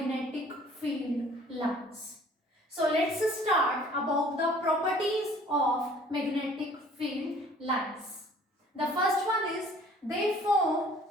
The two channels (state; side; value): normal; both; correlation 0.53